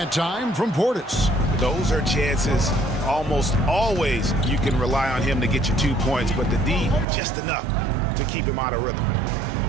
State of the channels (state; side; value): drops out; left; at 7.1 s